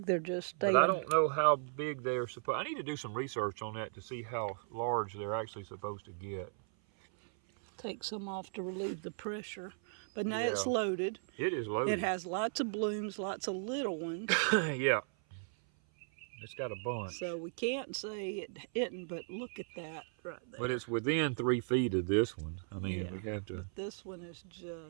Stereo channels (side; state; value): left; silent; 53 dB below the other